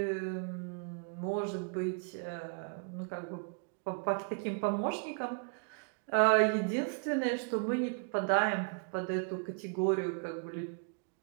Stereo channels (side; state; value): left; quieter; 38.3 dB